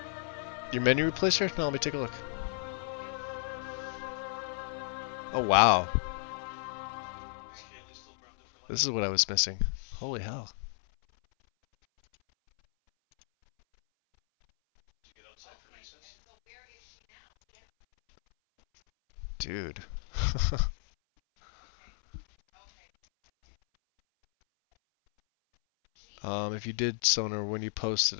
menu replacer? No, let me take a look. Oh wow. This is what I was missing. Holy hell. Dude. If you did Sonar, when you posted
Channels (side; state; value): right; silent; 56 dB below the other